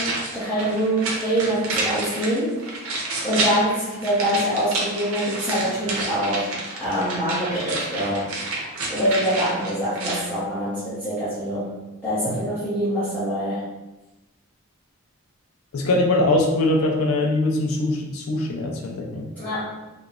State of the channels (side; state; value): both; normal; correlation 0.18